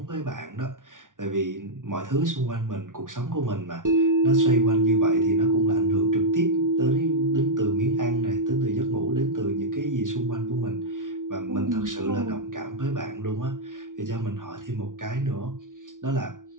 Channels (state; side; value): late; left; 0.88 ms